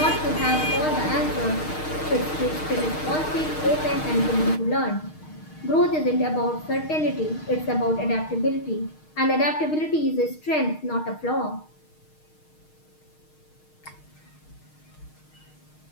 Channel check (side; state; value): right; late; 6.5 ms